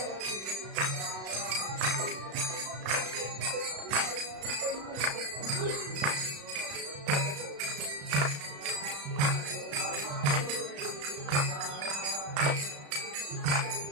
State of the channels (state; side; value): late; left; 35 ms